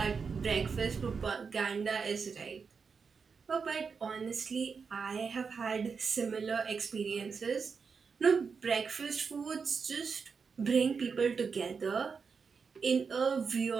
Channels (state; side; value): quieter; left; 5.5 dB